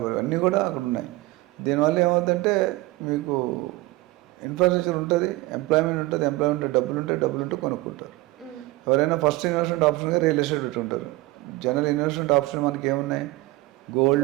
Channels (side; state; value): left; quieter; 20.4 dB